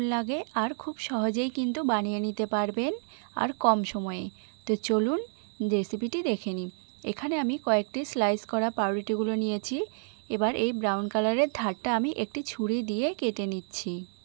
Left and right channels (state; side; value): silent; left; digital silence